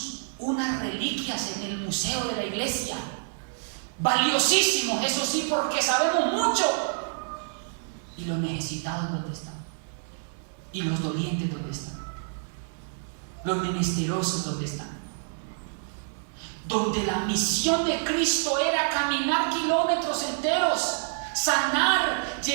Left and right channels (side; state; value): left; silent; 60 dB below the other